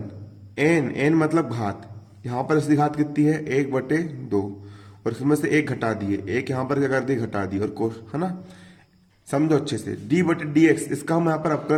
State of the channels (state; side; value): identical; both; correlation 1.00